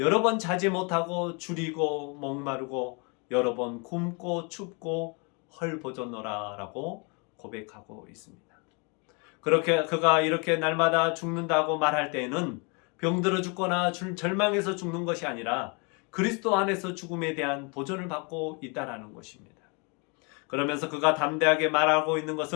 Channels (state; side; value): quieter; right; 33.1 dB